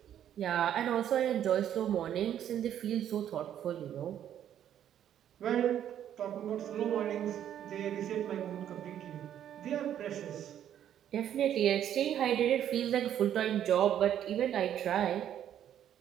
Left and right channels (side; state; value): left; quieter; 10.4 dB